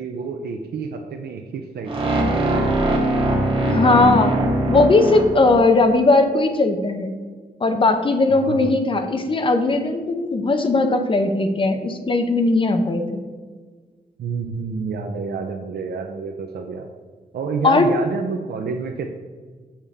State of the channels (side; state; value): both; normal; correlation 0.60